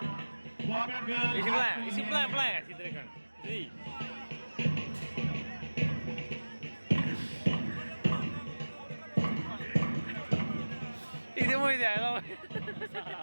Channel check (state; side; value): inverted; both; correlation -1.00